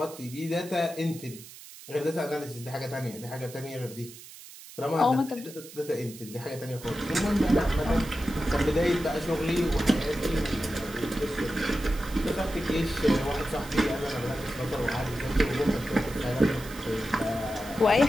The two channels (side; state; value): right; noise; hiss, 17 dB below the sound